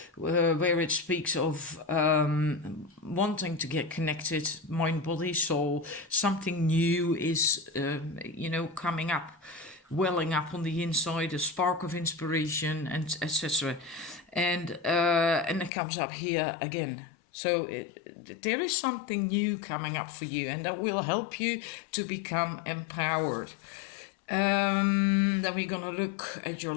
where it speaks of wanting to get connected, mind, body, soul. Something new is, coming up, welling up on the inside, a spark of inspiration, and etc. And it comes up here again. So there is something new coming up for you, and that will help you to become empowered. Then we're gonna look at your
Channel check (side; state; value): right; drops out; at 15.7 s